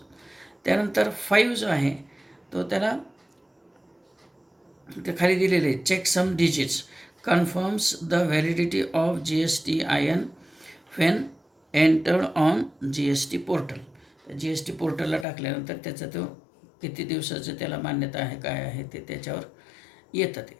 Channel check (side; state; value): right; drops out; at 15.2 s